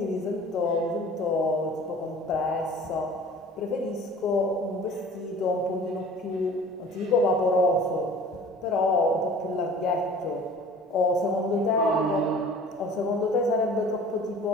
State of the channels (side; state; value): both; normal; correlation 0.45